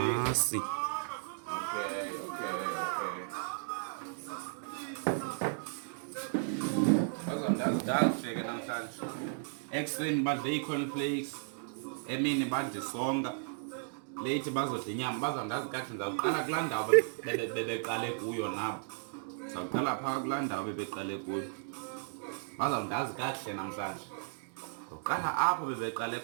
Okay. Ndazifike namhlanje. Ekuseni badle ii-cornflakes, emini badle isonka, late bazodla inyama. Bazawundazi kakuhle ndizawuqala kulaa ndawo bebeqale kuyo nabo. Ndizawuqala phaa kulaa ndawo bebeqale kuyo. Bazawundazi kakuhle namhlanje. Ndizawuqala apho bebeqale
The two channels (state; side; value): silent; left; digital silence